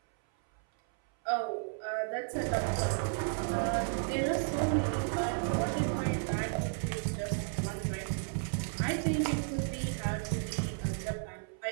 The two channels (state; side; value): silent; left; 56 dB below the other